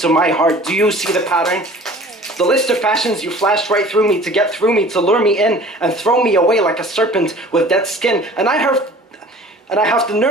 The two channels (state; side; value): normal; both; correlation 0.46